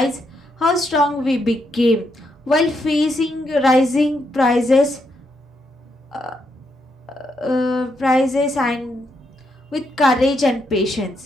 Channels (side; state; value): both; normal; correlation 0.79